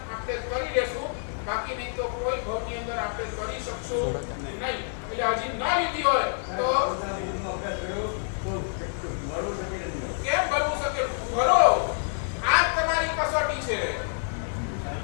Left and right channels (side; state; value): right; silent; 58 dB below the other